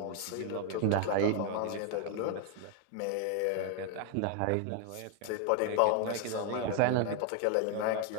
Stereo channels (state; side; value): different; both; correlation 0.00